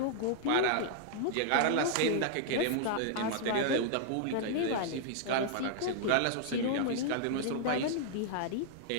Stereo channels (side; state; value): both; different; correlation -0.01